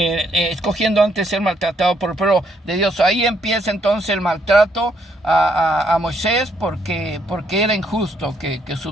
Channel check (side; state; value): both; normal; correlation 0.72